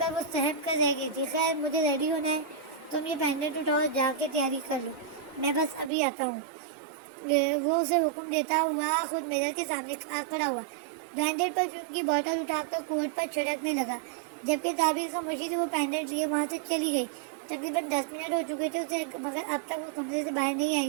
وہ سہم کر رہ گئی تھی۔ خیر، مجھے ریڈی ہونا ہے، تم یہ پینڈنٹ اٹھاؤ اور جا کے تیاری کر لو، میں بس ابھی آتا ہوں۔ وہ اسے حکم دیتا ہوا خود میرر کے سامنے کھڑا ہوا، برانڈیڈ پرفیوم کی بوتل اٹھا کر کوٹ پر چھڑکنے لگا، جبکہ تعبیر خاموشی سے وہ پینڈنٹ لیے وہاں سے چلی گئی۔ تقریباً 10 منٹ ہو چکی تھی اسے، مگر اب تک وہ کمرے سے باہر نہیں آئی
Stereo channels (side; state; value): left; drops out; at 5.9 s